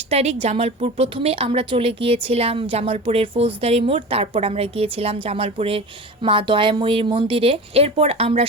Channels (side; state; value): both; normal; correlation 0.32